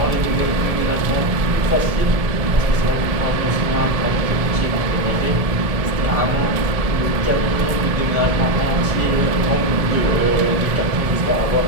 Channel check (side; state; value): left; late; 1.7 ms